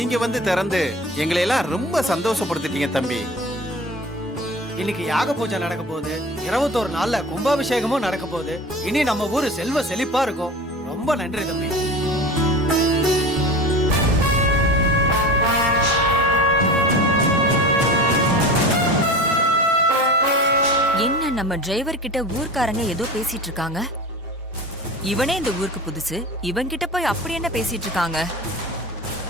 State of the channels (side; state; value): both; normal; correlation 0.34